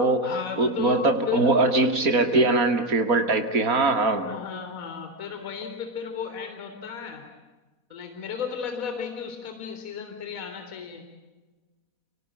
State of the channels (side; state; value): left; late; 4.1 ms